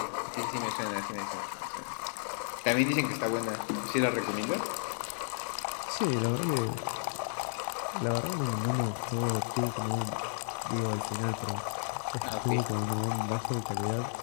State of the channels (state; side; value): silent; right; digital silence